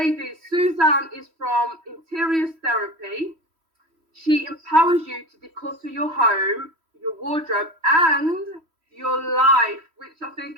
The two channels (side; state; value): left; late; 3.1 ms